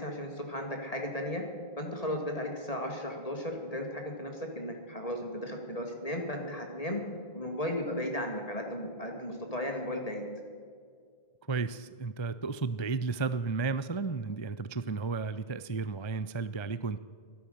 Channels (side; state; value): right; late; 1.3 ms